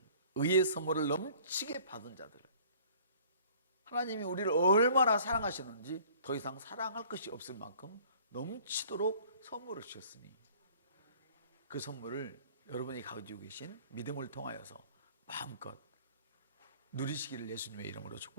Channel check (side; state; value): both; inverted; correlation -0.51